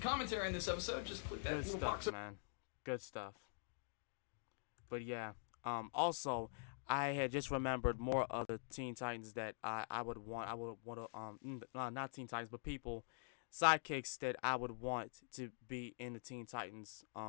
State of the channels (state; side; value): silent; right; digital silence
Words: on this episode, just click that Good little stuff, box. man. Good stuff. But yeah, also, I had just remembered more of the Teen Titans that I would want to not Teen Titans, but people, sidekicks that I would want to be in the Teen Titans,